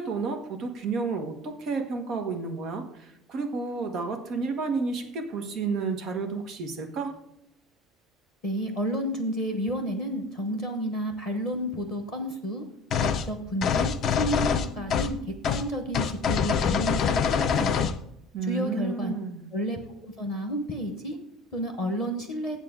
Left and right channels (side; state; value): both; normal; correlation 0.39